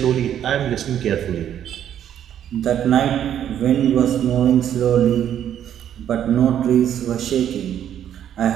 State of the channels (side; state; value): left; quieter; 10.1 dB